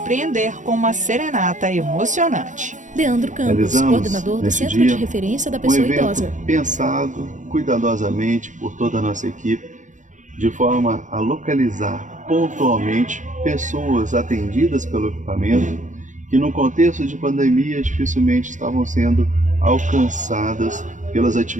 com uma serenata emocionante. Leandro Campos, coordenador do Centro de Referência da Pessoa Idosa. Pensado cuidadosamente por toda a nossa equipe, de forma a localizar pontualmente pessoas atendidas pelo equipamento que no contexto de pandemia dificilmente estavam sendo alcançadas pelas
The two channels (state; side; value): late; left; 0.36 ms